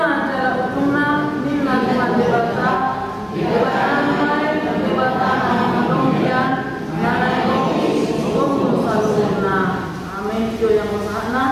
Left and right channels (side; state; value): both; identical; correlation 1.00